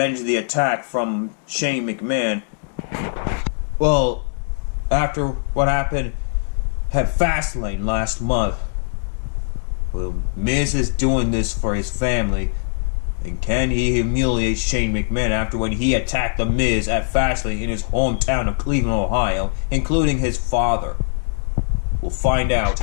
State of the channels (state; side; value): silent; right; digital silence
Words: the attack from Shane McMahon? Well, after what happened at Fastlane last month, well, Miz is doing this for his family. And can he humiliate Shane McMahon after when he attacked The Miz at Fastlane in his hometown of Cleveland, Ohio, including his father? We'll find out